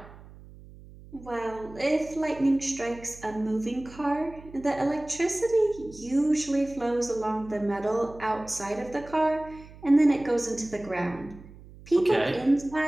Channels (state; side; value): noise; right; hum, 19 dB below the sound